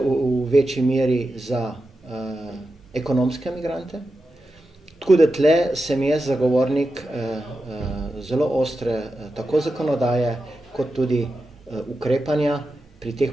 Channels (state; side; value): normal; both; correlation 0.90